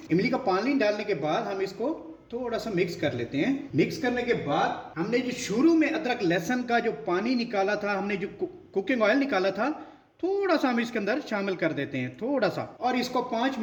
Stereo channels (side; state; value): both; identical; correlation 1.00